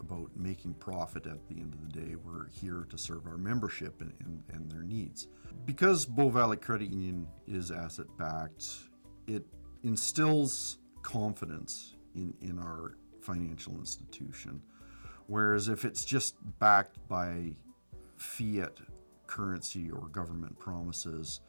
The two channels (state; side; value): inverted; both; correlation -1.00